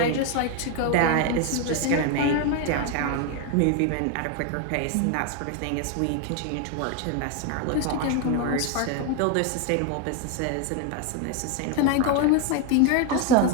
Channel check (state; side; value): different; both; correlation 0.01